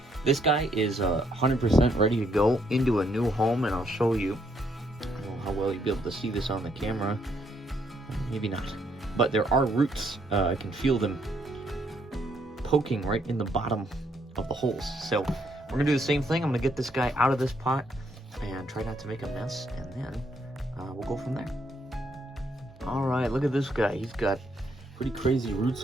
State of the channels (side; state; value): both; normal; correlation 0.72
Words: this guy is 100% ready to go into a new home, and I'll show you. I don't know how well you'll be able to see this on the camera, maybe not, but there are roots. I can feel them poking right in the bottom of the holes. So we're gonna do the same thing. I'm gonna get this guy out of this pot and try not to make a mess, and then we'll go from there. All right, look at this guy. He's got pretty crazy roots